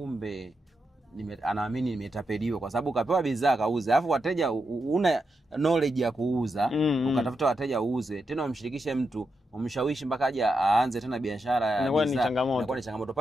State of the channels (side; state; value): both; normal; correlation 0.86